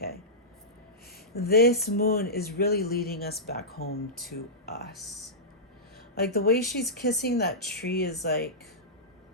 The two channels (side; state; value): both; normal; correlation -0.15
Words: this moon is really leading us back home to us. Like the way she's kissing that tree is like,